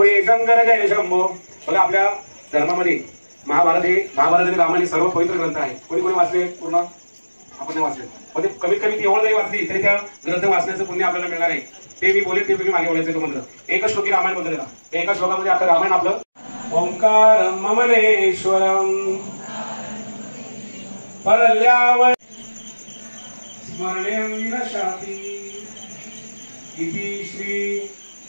शंकर जय शंभो. बघा आपल्या धर्मामध्ये महाभारत आणि रामायण सर्व पवित्र ग्रंथ आहे. कोणी कोणी वाचले पूर्ण? आपण नाही वाचले, पण ते कमीत कमी ती एवढं जरी वाचली तरी त्या ग्रंथ वाचण्याचं पुण्य आपल्याला मिळणार आहे. ते मी बोले ते मी मागे बोलायचं तो मंत्र. एकच श्लोकी रामायण बोलतो त्याला. एका श्लोकामध्ये आपलं रामायण आपलं ओंकारं ममलेश्वरं परल्यावय स्मरणेन विनशाति इति श्री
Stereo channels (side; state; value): both; inverted; correlation -1.00